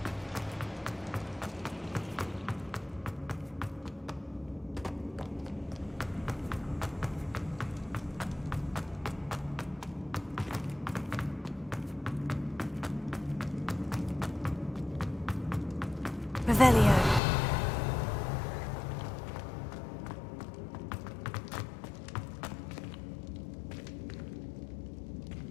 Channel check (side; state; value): right; drops out; at 17.2 s